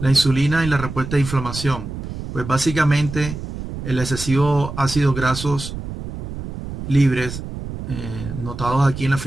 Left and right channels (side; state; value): right; noise; rumble, 8 dB below the sound